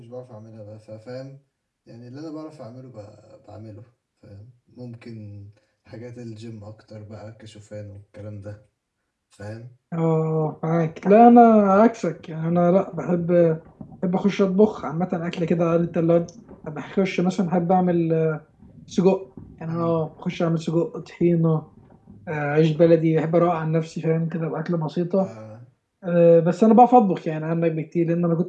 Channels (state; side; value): identical; both; correlation 1.00